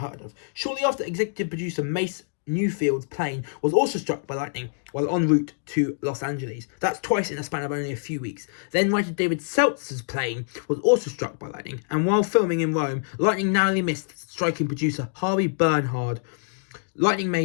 of. Shortly after, executive producer Mace Newfield's plane was also struck by lightning while en route to Los Angeles. That's twice in a span of only a few weeks. Then writer David Seltzer's plane was also struck by lightning, and while filming in Rome, lightning narrowly missed striking producer Harvey Bernhard. Lightning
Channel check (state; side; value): silent; right; digital silence